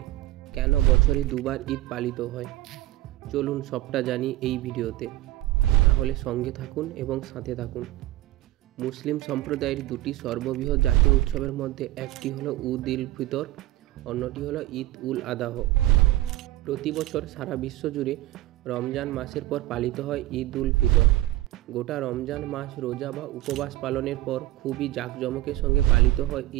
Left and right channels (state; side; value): quieter; left; 15.3 dB